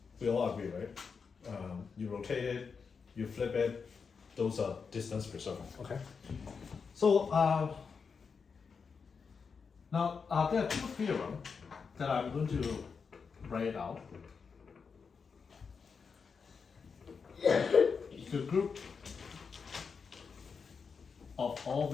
We all agree, right? You rotate it, you flip it, those are distance preserving. Okay. So now there are two theorems that I'm going to write out. The group of all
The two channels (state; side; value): quieter; right; 5.6 dB